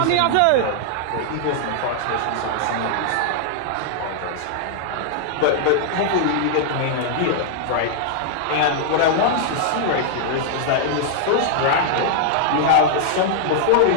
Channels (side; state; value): both; different; correlation 0.00